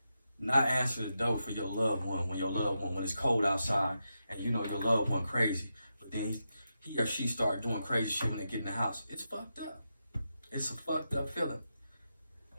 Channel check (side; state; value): both; inverted; correlation -0.87